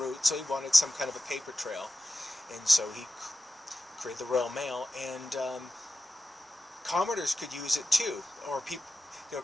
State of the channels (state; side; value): normal; both; correlation 0.93